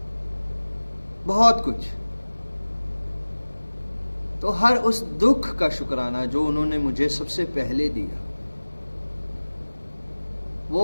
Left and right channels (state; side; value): inverted; both; correlation -1.00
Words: बहुत कुछ। तो हर उस दुख का शुक्राना जो उन्होंने मुझे सबसे पहले दिया,